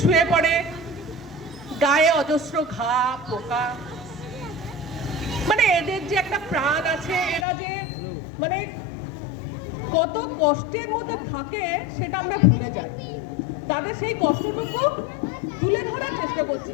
শুয়ে পড়ে, গায়ে অজস্র ঘা পোকা। মানে এদের যে একটা প্রাণ আছে, এরা যে মানে কত কষ্টের মধ্যে থাকে সেটা আমরা ভুলে যাই। তাদের সেই কষ্টটুকু তুলে ধরার চেষ্টা করছি।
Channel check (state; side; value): drops out; right; at 7.5 s